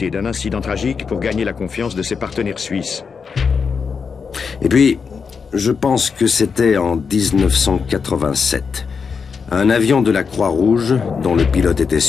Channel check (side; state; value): right; quieter; 5.7 dB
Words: d'un incident tragique pour gagner la confiance de ses partenaires suisses. Et puis, je pense que c'était en 1987. Un avion de la Croix-Rouge, dont le pilote était